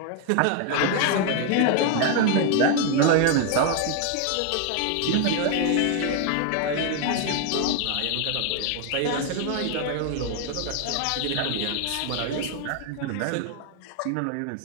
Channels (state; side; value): different; both; correlation 0.01